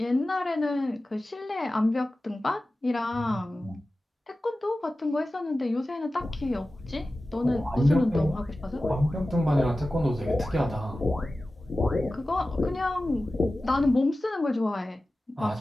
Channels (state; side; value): normal; both; correlation 0.95